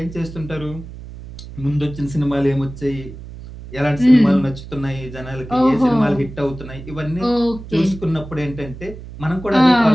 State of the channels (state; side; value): noise; right; hum, 14 dB below the sound